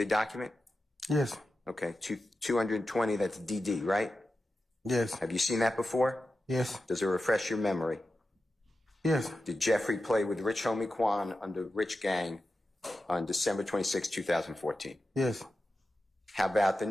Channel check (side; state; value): both; normal; correlation 0.91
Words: document? Yes. Okay, 220, that's DD, right? Yes. Have you seen that before? Yes. Does it refresh your memory? Yes. Did Jeffrey play with Rich Homie Quan under Rich Gang on December 26, 2014? Yes. How about the